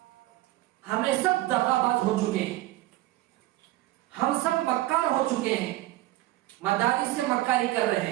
ہمیں سب دغا باز ہو چکے ہیں، ہم سب مکار ہو چکے ہیں، مدارس سے مکاری کر رہے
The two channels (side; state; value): left; quieter; 16.8 dB